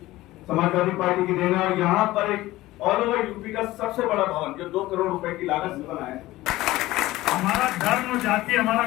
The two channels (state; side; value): quieter; right; 17.4 dB